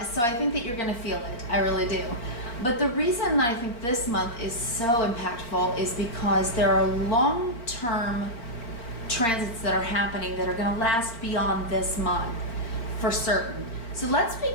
So I think that you're going to feel it. I really do. But the reason that I think this month is so impactful is because there are long-term transits that are happening that are going to last beyond this month for certain. So let's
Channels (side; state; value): right; late; 4.4 ms